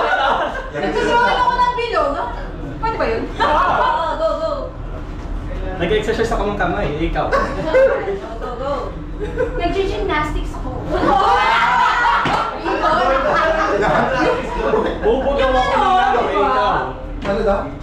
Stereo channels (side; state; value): both; identical; correlation 1.00